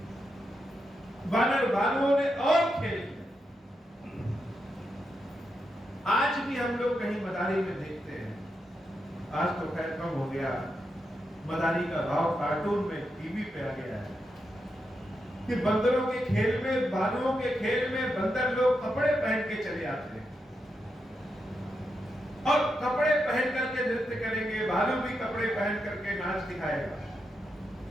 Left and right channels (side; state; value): both; normal; correlation 0.85